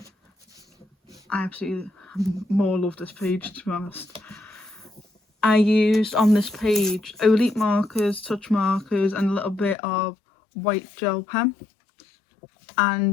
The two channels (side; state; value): right; drops out; at 9.8 s